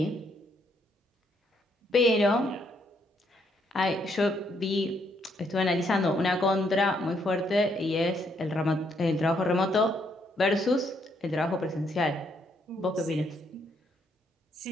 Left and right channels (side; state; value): both; normal; correlation 0.73